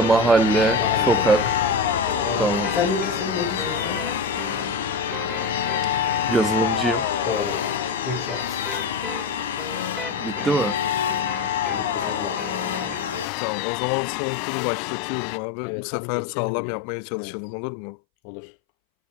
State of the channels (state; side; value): drops out; right; at 13.2 s